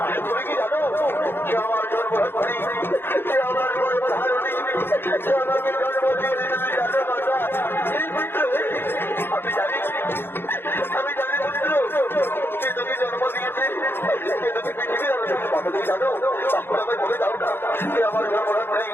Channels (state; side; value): late; right; 0.10 ms